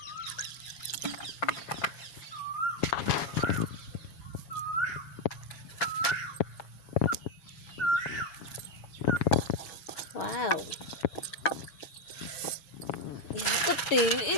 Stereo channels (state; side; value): late; right; 7.2 ms